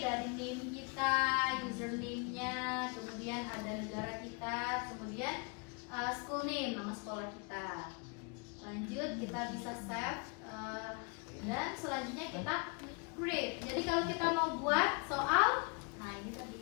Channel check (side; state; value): right; quieter; 34.4 dB